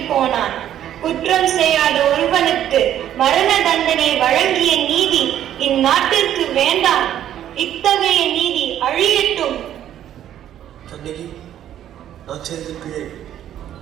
போனான். குற்றம் செய்யாத ஒருவனுக்கு மரண தண்டனை வழங்கிய நீதி இந்நாட்டிற்கு வேண்டாம். இத்தகைய நீதி அழியட்டும். கண்ணகி, நான் செய்த பிழை.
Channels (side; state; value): left; quieter; 11.1 dB